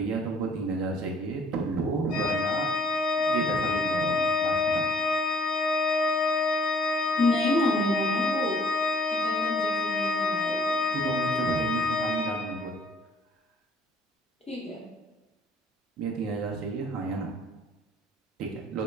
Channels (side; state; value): both; normal; correlation 0.58